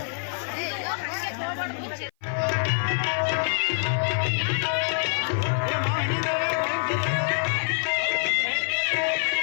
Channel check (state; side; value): silent; right; 55 dB below the other